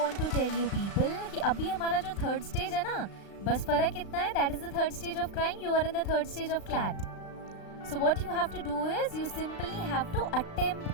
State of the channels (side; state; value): right; late; 36 ms